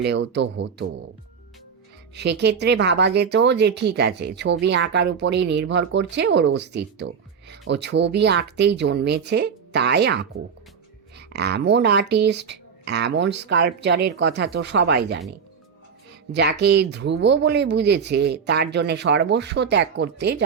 তো হতো। সেক্ষেত্রে ভাবা যেত যে ঠিক আছে, ছবি আঁকার উপরেই নির্ভর করছে ওর অস্তিত্ব, ও ছবি আঁকতেই জন্মেছে, তাই আঁকুক। এমন আর্টিস্ট, এমন স্কাল্পচারের কথা তো সবাই জানে। যাকে ধ্রুব বলে বুঝেছে তার জন্য সর্বস্ব ত্যাগ করতে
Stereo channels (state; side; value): quieter; left; 6.5 dB